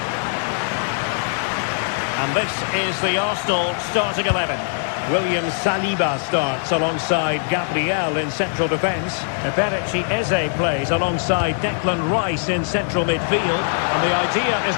And this is the Arsenal starting 11. William Saliba starts alongside Gabriel in central defence. Eberechi Eze plays alongside Declan Rice in central midfield. And the idea is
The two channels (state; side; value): silent; right; digital silence